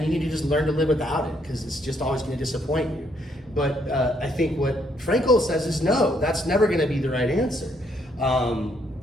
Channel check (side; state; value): both; normal; correlation 0.71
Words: you need to just learn to live without it because it's just always going to disappoint you. But I think what Frankel says is no, that's never going to be the right answer.